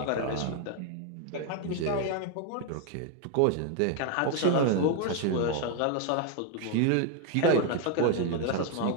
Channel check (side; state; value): both; different; correlation 0.01